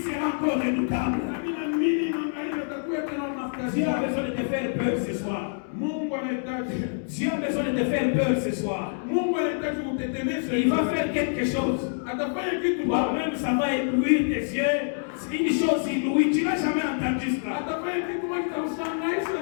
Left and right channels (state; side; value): silent; right; 61 dB below the other